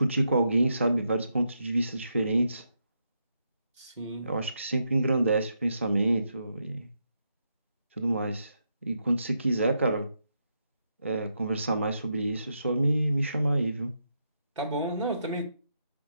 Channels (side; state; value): both; inverted; correlation -0.81